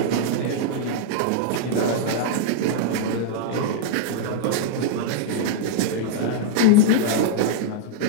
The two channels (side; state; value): both; different; correlation -0.01